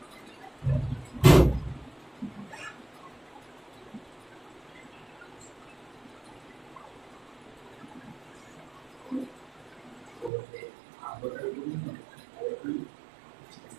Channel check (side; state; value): left; drops out; at 10.3 s